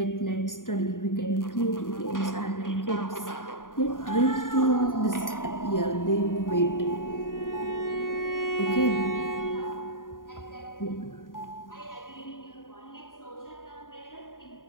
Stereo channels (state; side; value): late; right; 0.89 ms